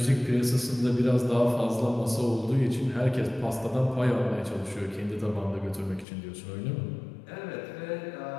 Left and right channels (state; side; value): drops out; right; at 6.1 s